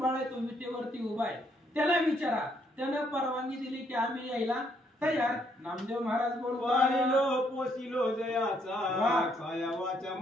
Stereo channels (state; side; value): normal; both; correlation 0.71